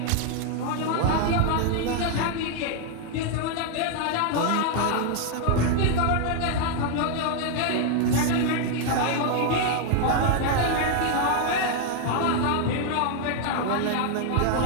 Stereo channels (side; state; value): both; different; correlation 0.00